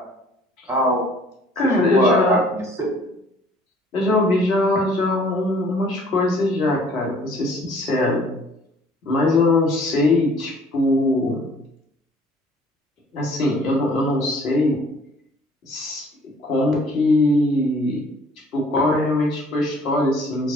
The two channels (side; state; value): both; normal; correlation 0.56